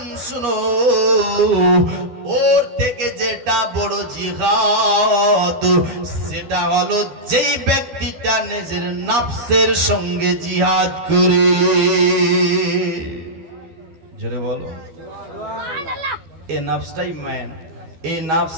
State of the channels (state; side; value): late; left; 12 ms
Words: শুনো, ওর থেকে যেটা বড় জিহাদ সেটা হলো যেই ব্যক্তিটা নিজের নফসের সঙ্গে জিহাদ করে। জোরে বলো সুবহানাল্লাহ। এই নফসটাই ম্যান, এই